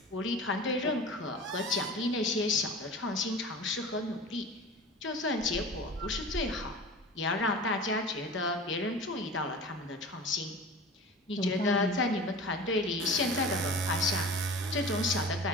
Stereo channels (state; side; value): normal; both; correlation 0.36